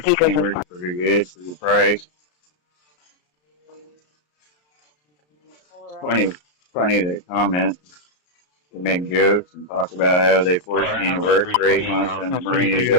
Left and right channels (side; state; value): right; late; 33 ms